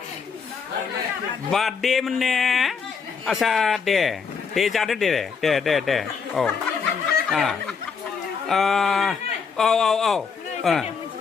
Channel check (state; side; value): quieter; right; 5.8 dB